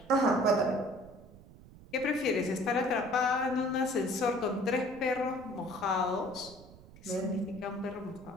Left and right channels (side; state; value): right; noise; rumble, 20 dB below the sound